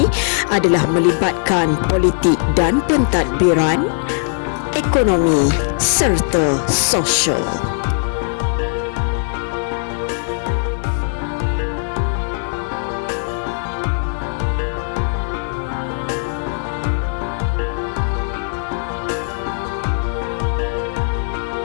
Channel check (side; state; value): right; silent; 67 dB below the other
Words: adalah melibatkan politik dan pentadbiran, ekonomi serta sosial.